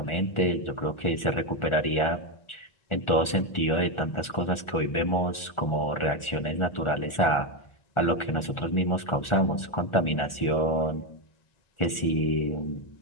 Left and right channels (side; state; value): right; late; 1.4 ms